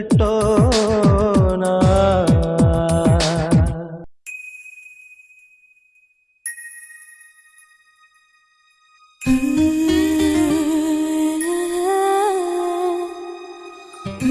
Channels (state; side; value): identical; both; correlation 1.00